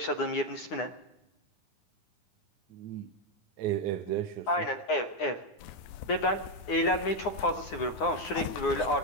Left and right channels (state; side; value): late; right; 9.7 ms